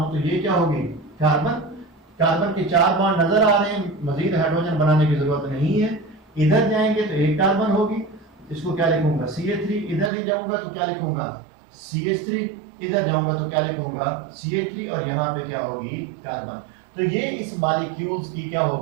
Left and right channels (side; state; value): left; drops out; at 10.1 s